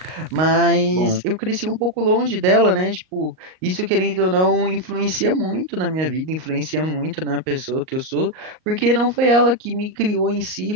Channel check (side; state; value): left; late; 38 ms